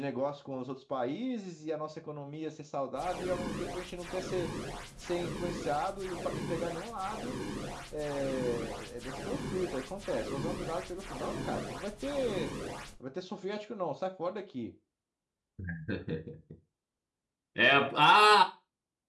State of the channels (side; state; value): both; identical; correlation 1.00